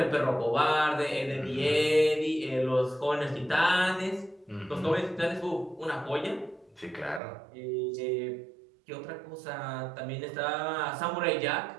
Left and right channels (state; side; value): drops out; left; at 7.2 s